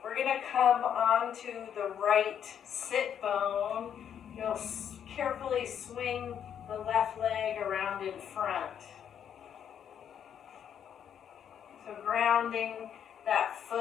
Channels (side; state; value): right; quieter; 8.8 dB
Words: We're going to come onto the right sit bone. You'll carefully swing the left leg around in front. So grounding that